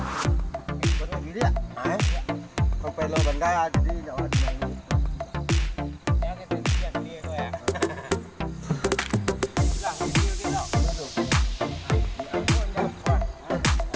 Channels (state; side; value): identical; both; correlation 1.00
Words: Batu Giriak. Mampailo Banda jadi Jawa Timur.